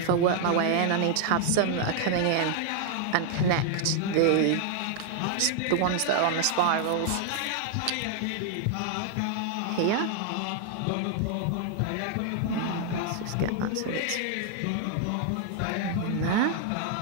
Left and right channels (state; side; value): different; both; correlation 0.00